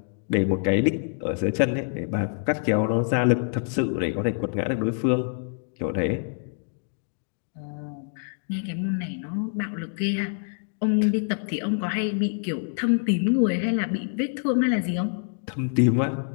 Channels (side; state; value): right; silent; 61 dB below the other